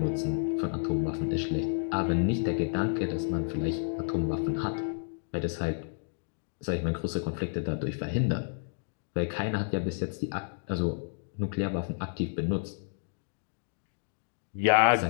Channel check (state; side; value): silent; right; digital silence